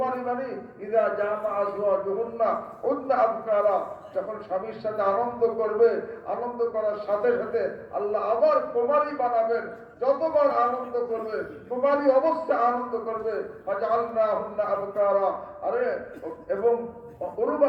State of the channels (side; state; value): both; identical; correlation 1.00